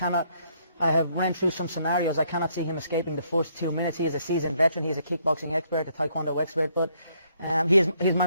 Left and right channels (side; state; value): both; inverted; correlation -0.70